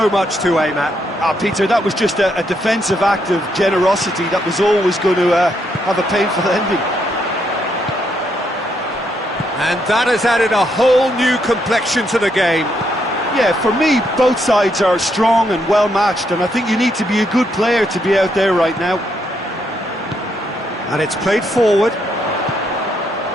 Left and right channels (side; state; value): both; normal; correlation 0.76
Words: much to aim at. Peter, that was just a defensive act of generosity that was always going to have a painful ending. And that has added a whole new complexion to the game. Yeah, for me, both sides are strong and well-matched, and I think you need to be a good player to be out there right now. And it's played forward.